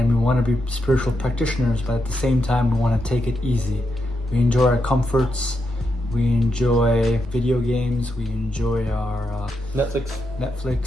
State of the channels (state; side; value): normal; both; correlation 0.83